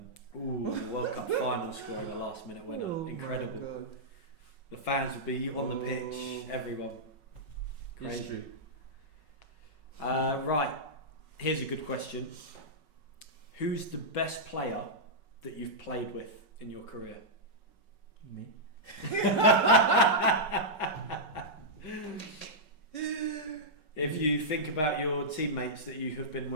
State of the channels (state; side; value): late; right; 5.4 ms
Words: Ooh, the World Cup final scoring the last minute winner. Incredible. My God. The fans would be on the pitch, everyone. History. Right, here's a good question. Who's the best player that you've played with in your career? Me. If you think about your teammates that you have been